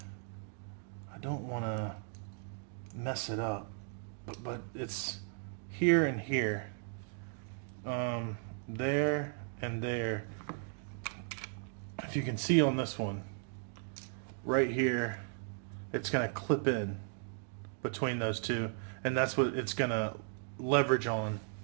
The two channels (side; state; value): left; silent; 54 dB below the other